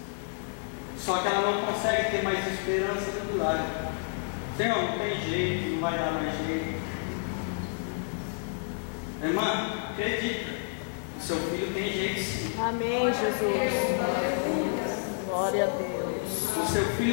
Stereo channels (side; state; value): right; silent; digital silence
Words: Só que ela não consegue ter mais esperança no milagre. Senhor, não tem jeito, não vai dar mais jeito. Irmã, acredita, o seu filho tem jeito sim. Amém, Jesus. Glória a Deus. O seu